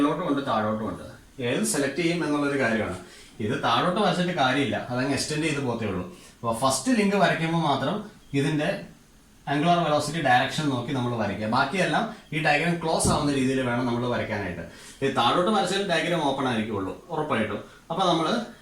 ഉണ്ട്, താഴോട്ടും ഉണ്ട്. ഏത് സെലക്ട് ചെയ്യും എന്നുള്ളൊരു കാര്യമാണ്. ഇത് താഴോട്ട് വരച്ചിട്ട് കാര്യമില്ല, അതങ്ങ് എക്സ്റ്റെൻഡ് ചെയ്ത് പോത്തേ ഉള്ളൂ. അപ്പോൾ ഫസ്റ്റ് ലിങ്ക് വരയ്ക്കുമ്പോൾ മാത്രം ഇതിന്റെ ആംഗുലർ വെലോസിറ്റി ഡയറക്ഷൻ നോക്കി നമ്മൾ വരയ്ക്കുക. ബാക്കിയെല്ലാം ഈ ഡയഗ്രാം ക്ലോസ് ആവുന്ന രീതിയിൽ വേണം നമ്മൾ വരയ്ക്കാനായിട്ട്. ഈ താഴോട്ട് വരച്ചാൽ ഡയഗ്രാം ഓപ്പൺ ആയിരിക്കുള്ളൂ ഉറപ്പായിട്ടും. അപ്പൊ നമ്മൾ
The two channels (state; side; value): identical; both; correlation 1.00